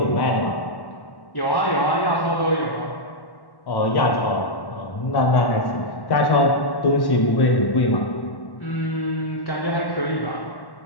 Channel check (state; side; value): late; right; 1.1 ms